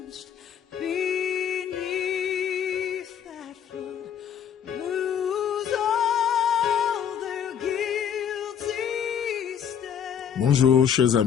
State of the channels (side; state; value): right; quieter; 8.4 dB